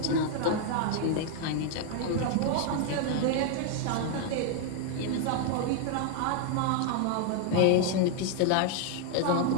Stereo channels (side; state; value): both; different; correlation 0.00